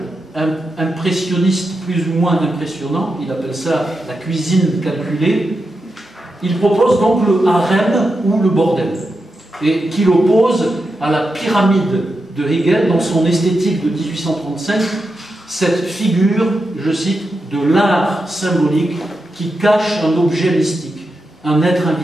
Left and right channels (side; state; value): both; normal; correlation 0.88